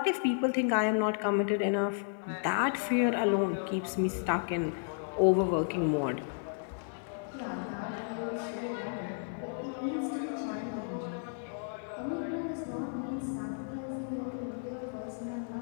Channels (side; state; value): right; silent; 56 dB below the other